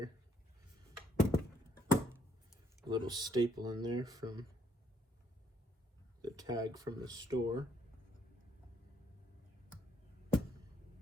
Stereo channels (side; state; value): both; normal; correlation 0.70